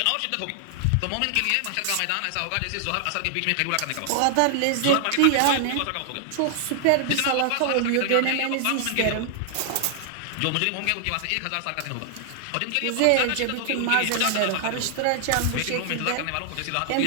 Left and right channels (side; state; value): both; different; correlation 0.00